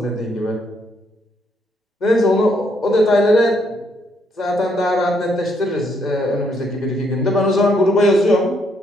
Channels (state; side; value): normal; both; correlation 0.73